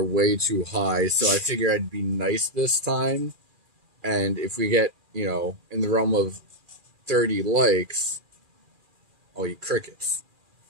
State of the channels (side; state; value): left; late; 2.4 ms